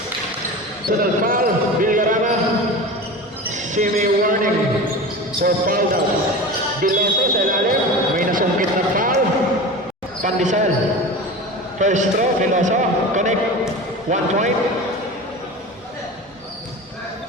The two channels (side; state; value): both; normal; correlation 0.31